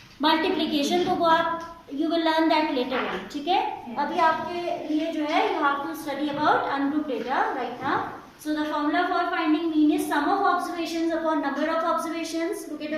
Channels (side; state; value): both; identical; correlation 1.00